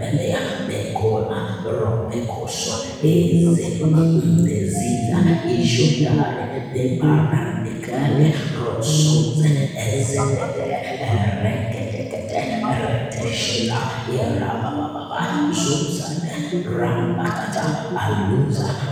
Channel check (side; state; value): both; identical; correlation 1.00